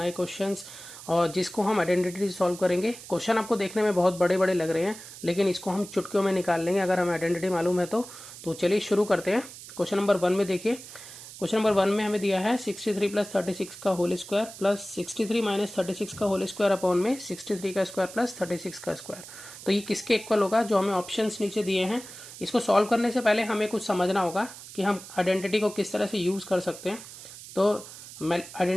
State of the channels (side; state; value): right; noise; hiss, 15 dB below the sound